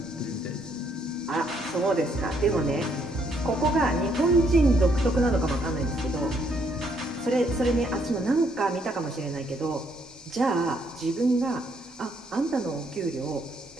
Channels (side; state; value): both; normal; correlation 0.71